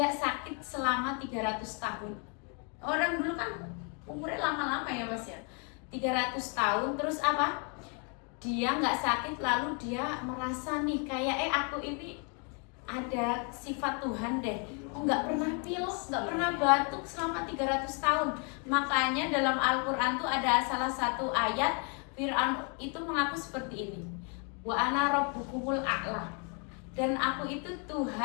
sakit selama 300 tahun. Orang dulu kan umurnya lama-lama ya Mas ya, 300 tahun. Terus apa? Dia nggak sakit, lalu dia merasa nih kayak aku ini ada sifat Tuhan deh. Nggak pernah pilek, nggak pernah batuk selama 300 tahun. Makanya dalam Al-Quran tuh ada salah satu ayat Fir'aun itu mengaku seperti ini, wa ana rabbukumul a'la, dan aku itu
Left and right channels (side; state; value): right; quieter; 37.6 dB